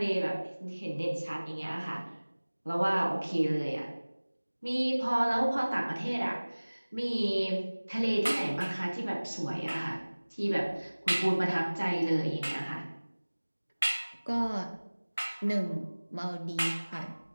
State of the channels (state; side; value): inverted; both; correlation -1.00